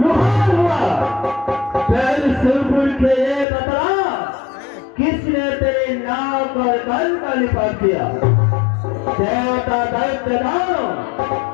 का निपात किया। देवता दैत्य दानव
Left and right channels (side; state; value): right; drops out; at 3.5 s